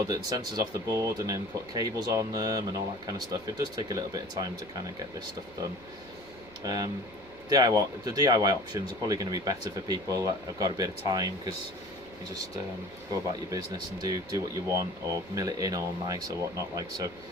the sensors off the board, and then put cables on them and all that kind of stuff, it does take a little bit of time to kind of get this stuff done. The DIY options are probably going to be better for people that have got a bit of time, because you just go about your business and do what you want, or mill it in all nice or whatnot, like so.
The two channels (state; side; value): normal; both; correlation 0.43